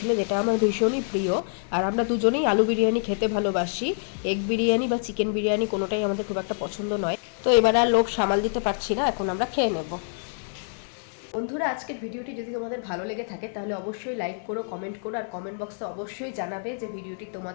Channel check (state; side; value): silent; right; digital silence